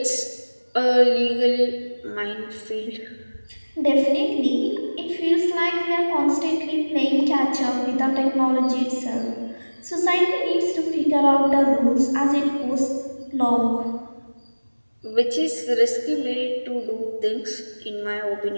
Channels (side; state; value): both; inverted; correlation -1.00